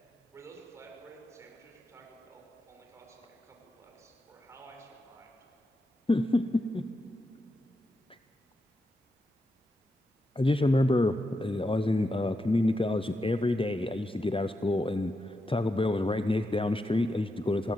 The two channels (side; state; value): both; normal; correlation 0.86